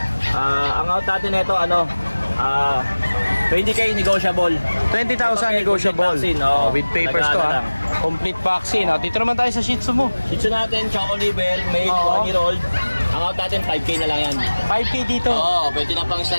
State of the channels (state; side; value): inverted; both; correlation -1.00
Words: Ang out natin nito, 20K negotiable. 20,000 negotiable. Vaccine, With papers to, ha? Complete vaccine. Dito naman tayo sa Shih Tzu mo. Shih Tzu natin, Choco Liver, made 1 year old. Ang out natin, 5K na lang yan. 5K dito. Pwede na pang